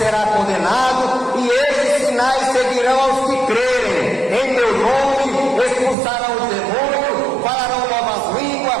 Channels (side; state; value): left; drops out; at 6.0 s